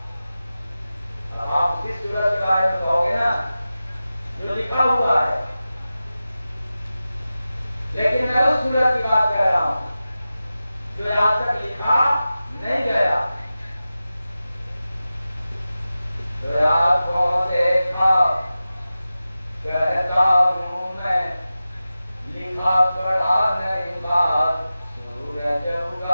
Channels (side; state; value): both; inverted; correlation -0.94